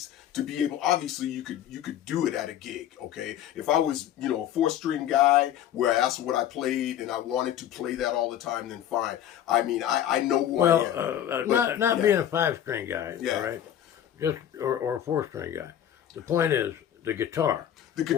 to be able. Obviously, you could do it at a gig. Okay, if I was a 4-string guy where that's what I played and I wanted to play that all the time, then fine. I mean, I know who I am. Not being a 5-string guy. Yeah. All right. Just or a 4-string guy. The point is the guitar. The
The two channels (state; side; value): quieter; right; 10.8 dB